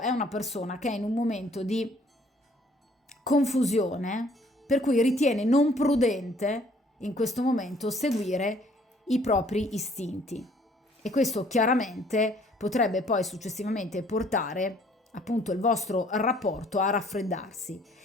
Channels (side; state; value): both; normal; correlation 0.60